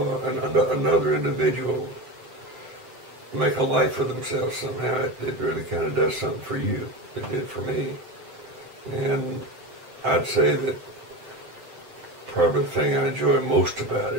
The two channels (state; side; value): late; left; 7.8 ms